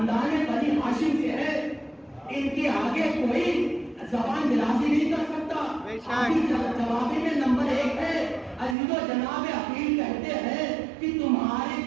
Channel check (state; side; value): drops out; left; at 8.8 s